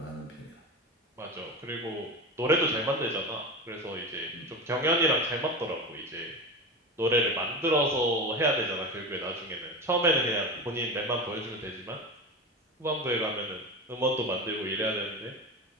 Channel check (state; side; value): normal; both; correlation 0.25